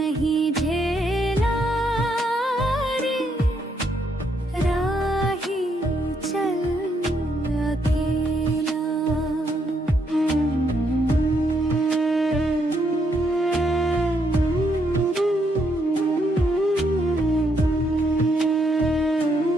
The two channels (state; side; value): normal; both; correlation 0.75